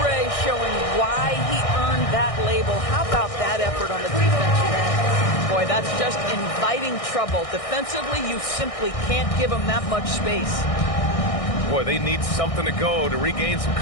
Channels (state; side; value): late; right; 1.6 ms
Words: showing why he earned that label. How about that effort on the defensive end? Boy, that's just inviting trouble. Defensively, you simply can't give him that much space. Boy, they need something to go to regain some